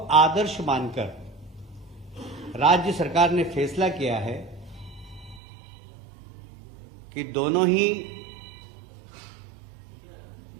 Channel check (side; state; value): left; drops out; at 5.4 s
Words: मानकर राज्य सरकार ने फैसला किया है कि दोनों ही